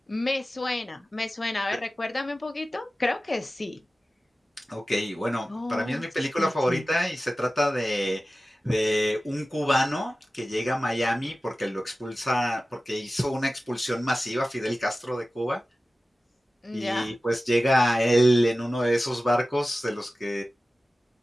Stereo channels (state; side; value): normal; both; correlation 0.96